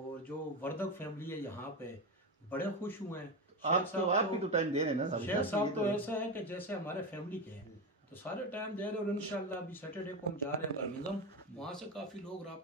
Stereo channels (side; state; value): both; normal; correlation 0.17